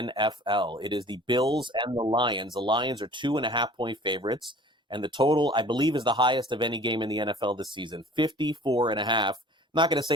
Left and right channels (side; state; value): both; normal; correlation 0.47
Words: It is the Bills and the Lions. The Lions are 2.5 point favorites, and the total, I believe, is the highest of any game in the NFL this season, 54.5. I'm not going to say